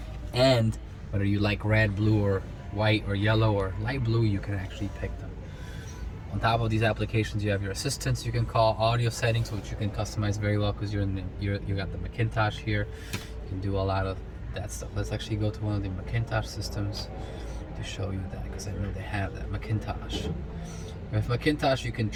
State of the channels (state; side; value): identical; both; correlation 1.00